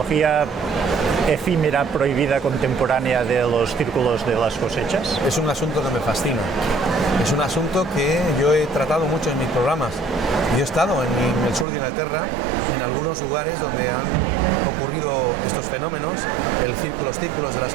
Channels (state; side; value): drops out; left; at 11.7 s